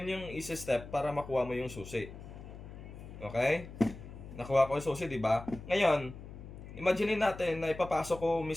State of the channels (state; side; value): noise; left; hum, 13 dB below the sound